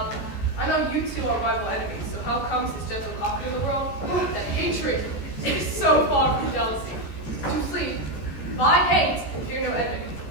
I know you two are rival enemies, so how comes this gentle cock in the world? That hatred is so far from jealousy. To sleep, by hate, and fear no enemy.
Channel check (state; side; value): late; right; 15 ms